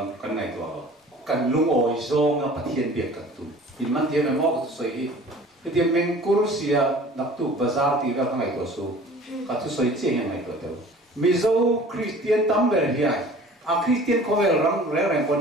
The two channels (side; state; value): both; normal; correlation 0.46